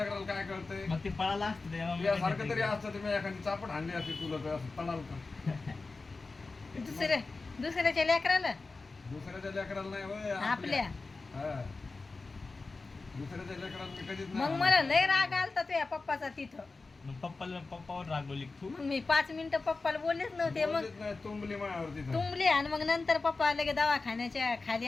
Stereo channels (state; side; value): quieter; right; 3.8 dB